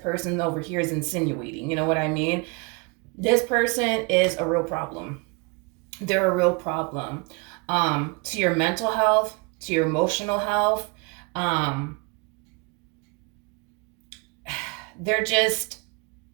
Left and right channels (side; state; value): left; quieter; 29.7 dB